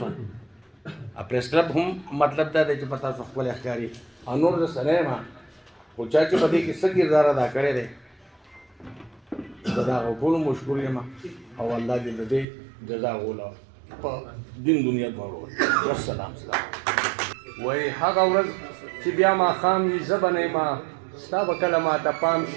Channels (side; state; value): left; drops out; at 12.5 s